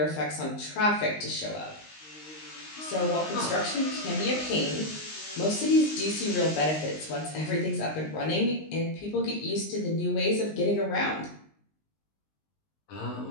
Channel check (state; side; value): late; right; 19 ms